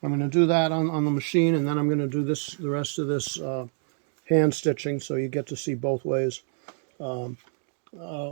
going to do that on the machine, and then I'm going to do the rest of this hand stitching, so you get to see both ways.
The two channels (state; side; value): silent; left; digital silence